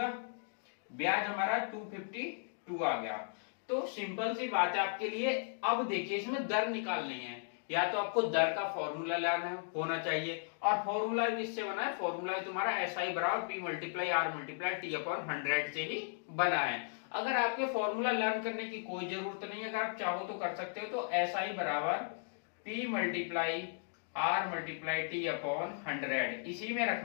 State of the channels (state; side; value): silent; right; digital silence